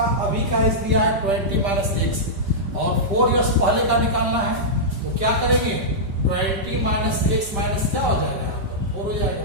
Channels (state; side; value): late; left; 5.1 ms